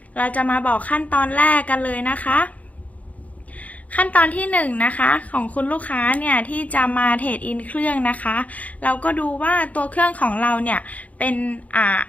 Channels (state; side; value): late; right; 0.070 ms